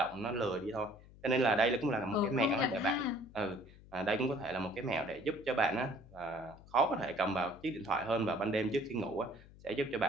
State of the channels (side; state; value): left; noise; hum, 21 dB below the sound